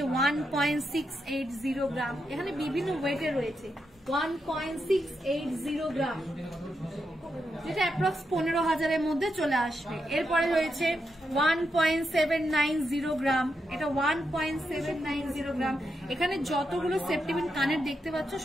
1.680 গ্রাম। এখানে বিভিন্ন ওয়েটের রয়েছে 1.680 গ্রাম, যেটা অ্যাপ্রক্স 15,000-এর মধ্যে চলে আসবে। এরপরে রয়েছে 1.790 গ্রাম, এটা 1.790 গ্রাম। এখানে যতগুলো সেপ্টিবিন কানের দেখতে পাচ্ছ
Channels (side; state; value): both; normal; correlation 0.84